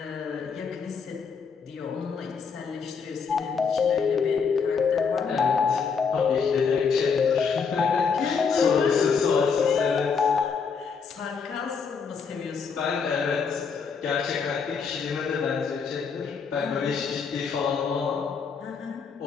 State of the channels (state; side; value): quieter; right; 5.8 dB